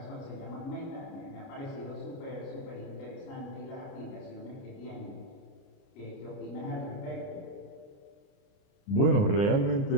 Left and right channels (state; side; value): late; right; 30 ms